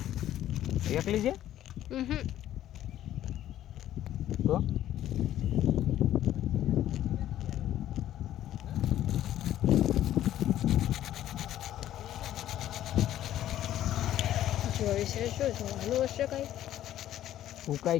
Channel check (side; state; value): right; quieter; 12.4 dB